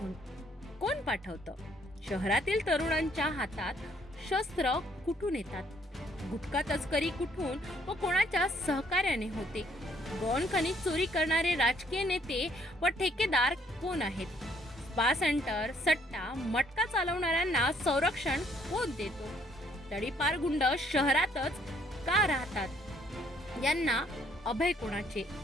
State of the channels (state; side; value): normal; both; correlation 0.65